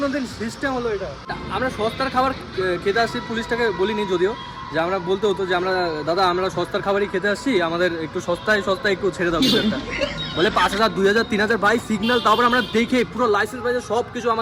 দিন সিস্টেম হলো? এটা আমরা সস্তার খাবার খেতে আসছি, পুলিশটাকে বলিনি যদিও, যে আমরা বলতে হতো যে আমরা দাদা আমরা সস্তার খাবারই খেতে আসছি, আমাদের একটু সস্তায় একটু ছেড়ে দাও একটা। বলে 5,000 2,000 3,000 ভাই সিগন্যাল, তারপর আমরা দেখে পুরো লাইসেন্স পাইছে সব কিছু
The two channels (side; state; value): both; identical; correlation 1.00